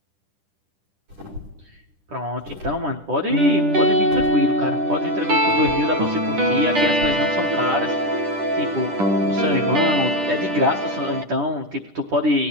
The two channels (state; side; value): late; left; 10 ms